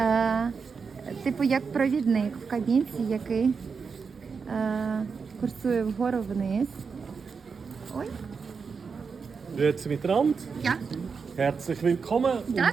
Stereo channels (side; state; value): left; quieter; 5.4 dB